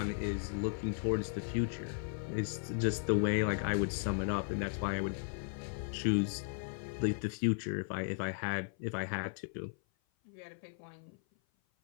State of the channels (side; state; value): right; silent; 54 dB below the other